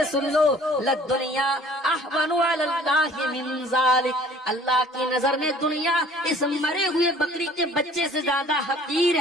سن لو. لد دنیا احون علی اللہ من ذالک, اللہ کی نظر میں دنیا اس مرے ہوئے بکری کے بچے سے زیادہ حقیر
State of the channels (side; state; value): both; normal; correlation 0.52